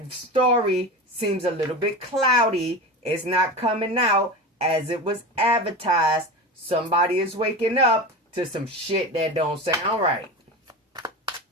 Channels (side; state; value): both; normal; correlation 0.27